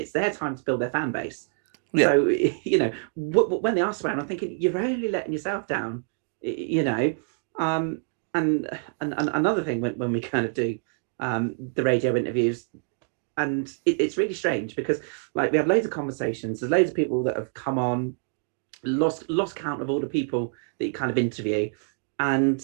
their time to build their fan base. Yeah. So when they are swearing, I'm thinking you're only letting yourself down. And another thing when we kind of do the radio interviews, and it's really strange because like we have loads of conversations. There's loads of people that have come on, lost count of all the people that you kind of interview, and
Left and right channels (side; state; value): left; silent; 60 dB below the other